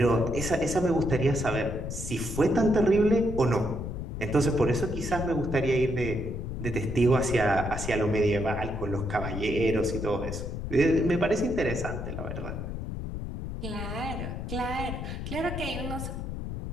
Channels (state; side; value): noise; left; rumble, 5 dB below the sound